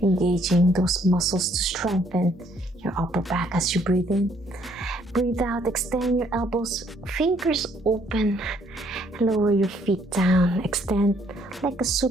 engaging those muscles to strengthen your upper back as you breathe in. Breathe out, extend your elbows, fingers open, lower your feet down, extend like a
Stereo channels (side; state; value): both; normal; correlation 0.66